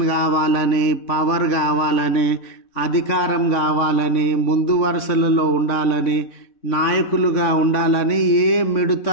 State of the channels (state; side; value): late; right; 3.6 ms